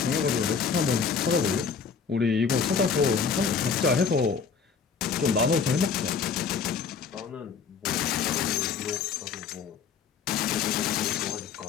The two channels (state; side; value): quieter; right; 6.0 dB